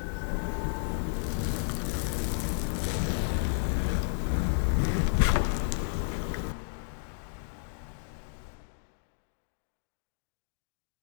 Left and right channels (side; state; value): right; silent; digital silence